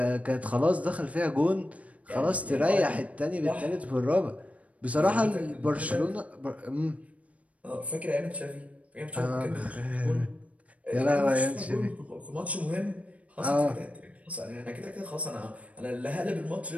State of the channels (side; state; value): left; late; 0.066 ms